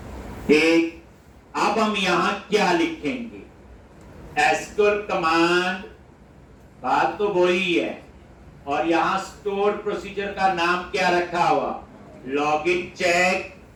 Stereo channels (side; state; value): both; identical; correlation 1.00